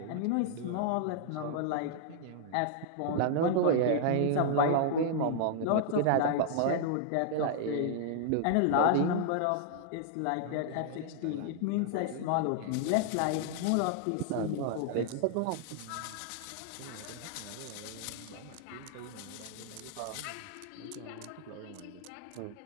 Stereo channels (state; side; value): different; both; correlation -0.01